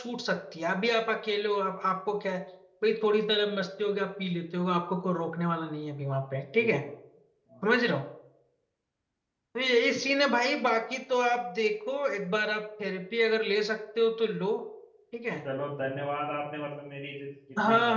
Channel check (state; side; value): identical; both; correlation 1.00